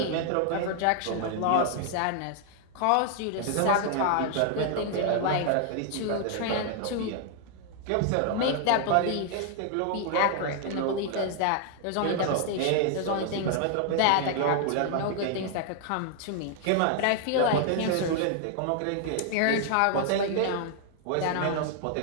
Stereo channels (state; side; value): different; both; correlation 0.00